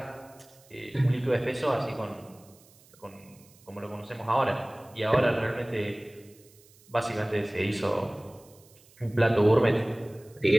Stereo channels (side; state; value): right; noise; hiss, 27 dB below the sound